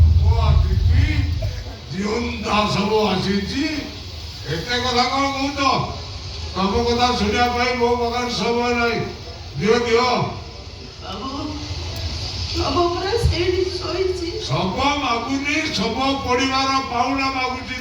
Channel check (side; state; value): both; identical; correlation 1.00